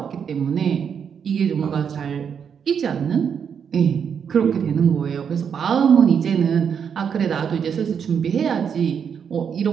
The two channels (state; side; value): quieter; left; 7.3 dB